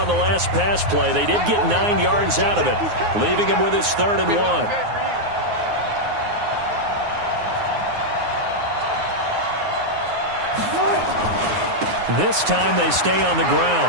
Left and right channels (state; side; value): late; left; 9.6 ms